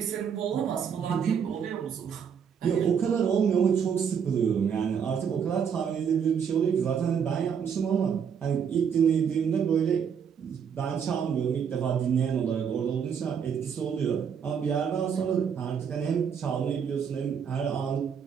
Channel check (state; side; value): quieter; left; 7.3 dB